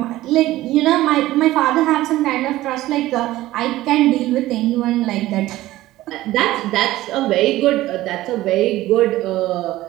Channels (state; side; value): quieter; left; 16.2 dB